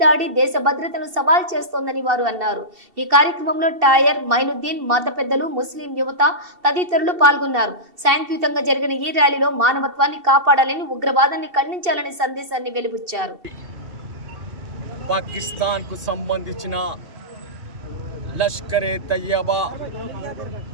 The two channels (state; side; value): late; left; 2.7 ms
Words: దాడి దేశ భద్రతను సవాల్ చేస్తోందని వారు అన్నారు. ఈ కార్యక్రమంలో టైర్ మైనుద్దీన్, మత పెద్దలు, ముస్లిం యువత తదితరులు పాల్గొన్నారు. శాంతియుతంగా జరిగిన ఈ ర్యాలీలో మానవత్వాన్ని కాపాడాలని, ఉగ్రవాదాన్ని ఖండించాలని సందేశాన్ని వెలుబుచ్చారు. పాకిస్తాన్ కు సంబంధించిన లష్కరే తయ్యబా